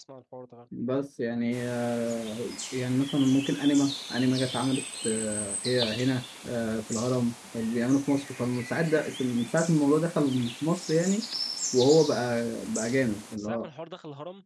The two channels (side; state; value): both; identical; correlation 1.00